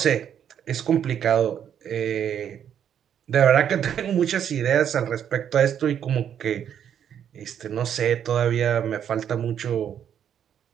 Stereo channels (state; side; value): quieter; left; 9.1 dB